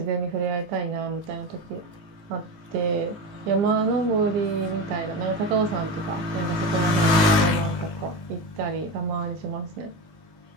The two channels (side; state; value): left; late; 19 ms